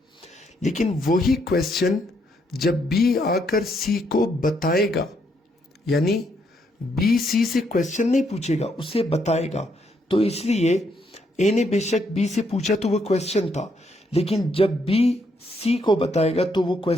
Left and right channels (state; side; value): normal; both; correlation 0.74